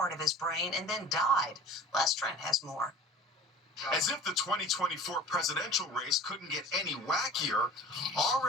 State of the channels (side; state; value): both; normal; correlation 0.41